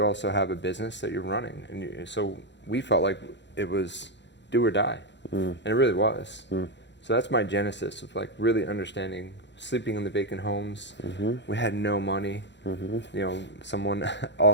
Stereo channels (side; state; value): right; late; 0.52 ms